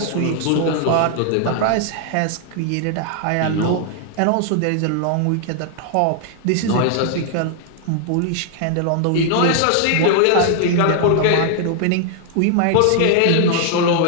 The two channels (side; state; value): both; different; correlation 0.00